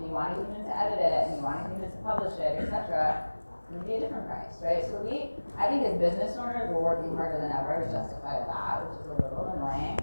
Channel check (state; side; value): inverted; both; correlation -1.00